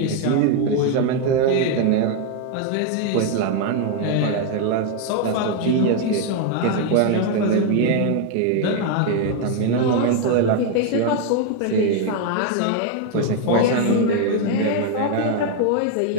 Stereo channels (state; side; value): different; both; correlation 0.01